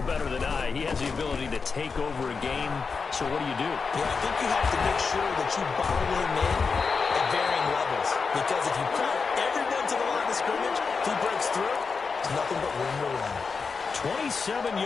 better than I, he has the ability to take over a game, so what do you do? Yeah, I think you have to make sure that you bottle him in at varying levels, because if you put everyone to the line of scrimmage, if he breaks through, it's nothing but room to run. 27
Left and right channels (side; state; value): right; quieter; 5.0 dB